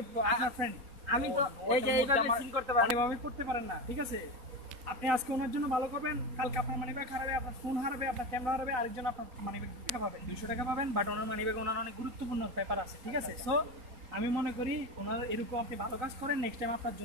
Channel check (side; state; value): left; late; 4.1 ms